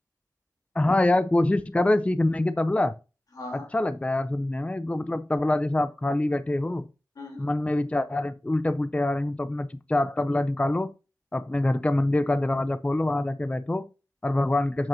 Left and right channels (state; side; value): normal; both; correlation 0.97